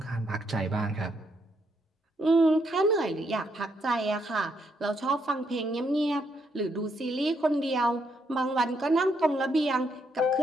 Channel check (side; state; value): both; normal; correlation 0.76